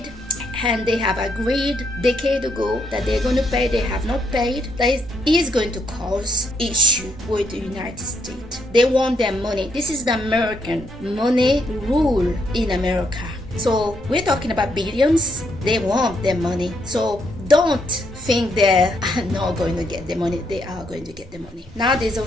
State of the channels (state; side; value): normal; both; correlation 0.75